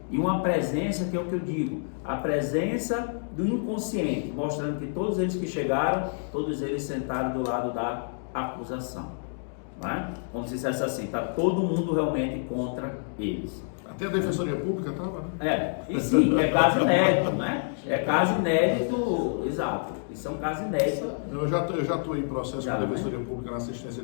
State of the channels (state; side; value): silent; right; digital silence